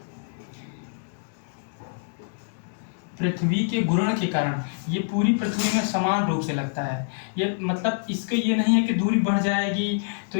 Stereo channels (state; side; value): silent; right; digital silence